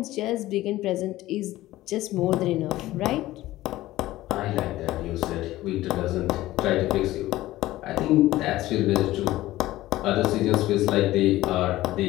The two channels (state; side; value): quieter; right; 16.3 dB